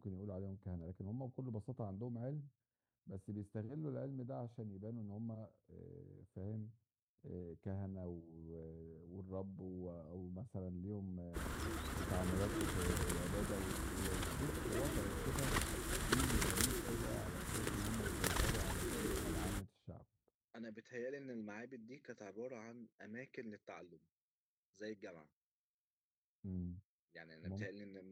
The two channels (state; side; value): identical; both; correlation 1.00